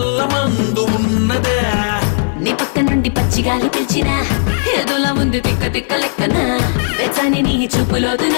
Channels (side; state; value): right; silent; digital silence